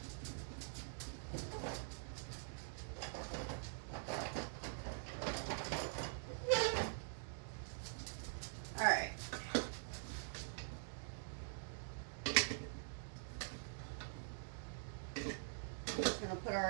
All right. We're just going to put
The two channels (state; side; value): silent; left; digital silence